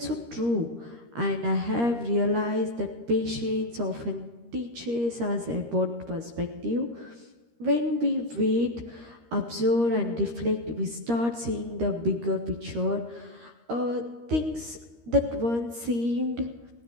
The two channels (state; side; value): late; left; 13 ms